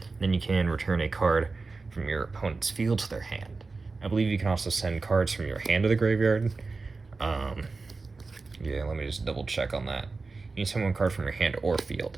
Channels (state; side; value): quieter; left; 4.0 dB